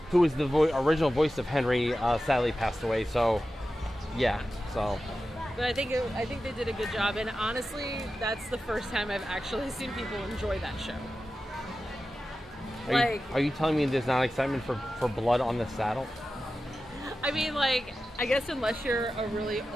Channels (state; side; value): normal; both; correlation 0.93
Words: who was the original voice of Henry, sadly passed away. So, yeah. So. But I think they did a good job, and honestly, that's the first time I've actually seen people enjoy that show. Are you telling me there's not excitement for Blood on the Saddle? I mean, like, I guess unless you're a really